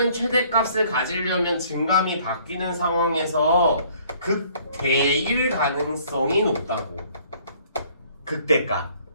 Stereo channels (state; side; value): inverted; both; correlation -0.59